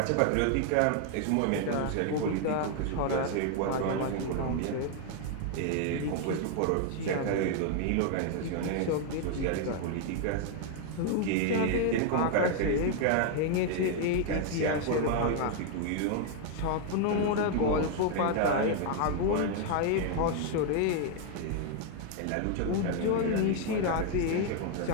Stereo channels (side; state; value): both; different; correlation 0.00